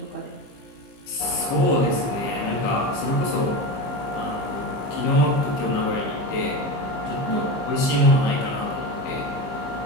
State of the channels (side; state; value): right; late; 15 ms